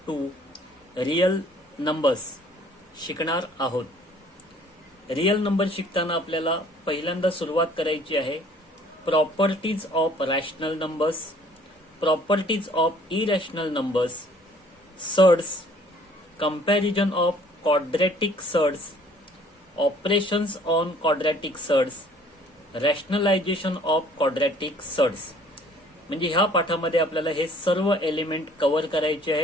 2 real numbers शिकणार आहोत. रियल नंबर शिकताना आपल्याला पहिल्यांदा सुरुवात करायची आहे properties of rational numbers, properties of irrational numbers, surds, comparison of quadratic surds, operations on quadratic surds, rationalisation of quadratic surds. म्हणजे ह्या पाठामध्ये आपल्याला हे सर्व एलिमेंट कव्हर करायचे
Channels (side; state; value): both; normal; correlation 0.57